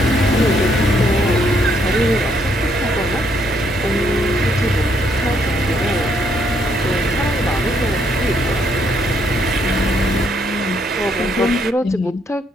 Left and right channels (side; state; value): both; normal; correlation 0.72